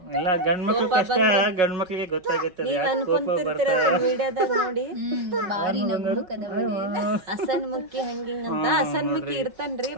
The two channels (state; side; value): late; left; 5.4 ms